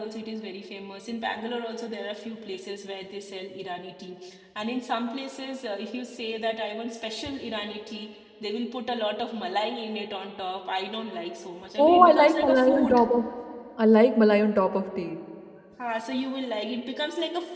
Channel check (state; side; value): identical; both; correlation 1.00